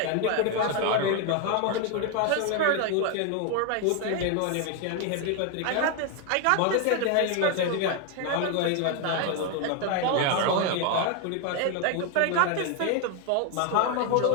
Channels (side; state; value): both; different; correlation 0.01